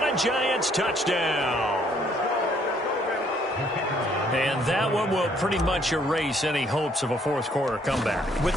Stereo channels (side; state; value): both; normal; correlation 0.65